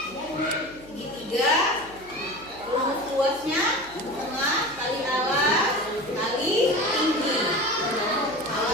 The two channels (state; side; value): noise; right; hum, 23 dB below the sound